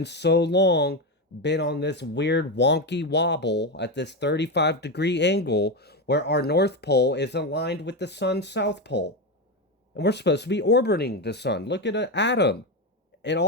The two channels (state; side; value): normal; both; correlation 0.13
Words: so long been on this weird wonky wobble at this 35-degree angle where our North Pole is aligned with the sun's South Pole. And we're supposed to be orbiting the sun. Look at an atom. It